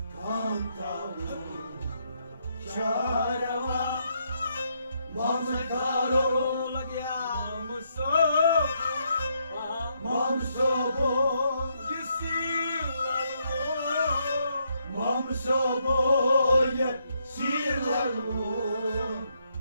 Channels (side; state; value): both; inverted; correlation -0.76